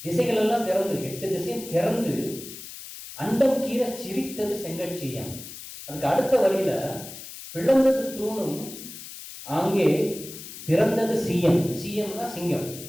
திசைகள் எல்லாம் திறந்து, 8 திசையும் திறந்து அண்டம் கீற சிரித்தது செங்கட்சியம். அதுக்கு அடுத்த வழியில பிளந்தது தூணும் அங்கே பிறந்தது சீயம். சீயம்னா சிங்கம்.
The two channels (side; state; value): left; noise; hiss, 13 dB below the sound